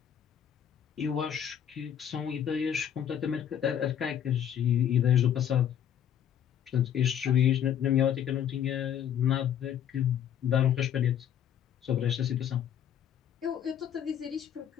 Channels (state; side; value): quieter; right; 9.5 dB